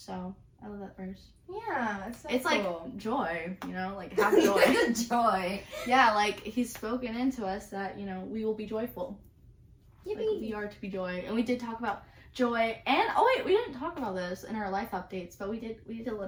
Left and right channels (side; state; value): both; identical; correlation 1.00